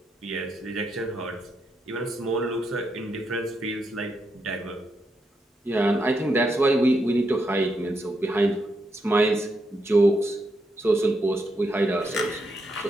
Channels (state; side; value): normal; both; correlation 0.81